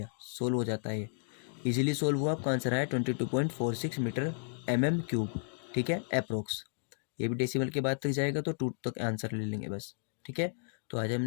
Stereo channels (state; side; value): silent; right; digital silence